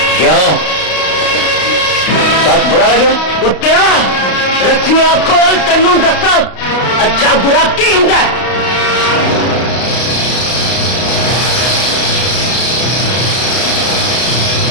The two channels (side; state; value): right; late; 32 ms